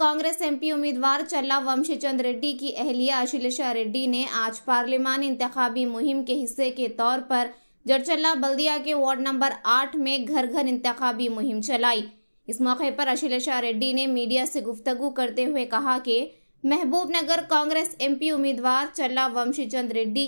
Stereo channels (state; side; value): inverted; both; correlation -1.00